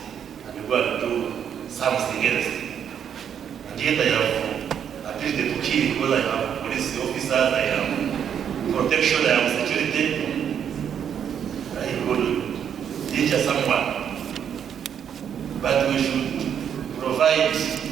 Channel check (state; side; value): quieter; left; 8.5 dB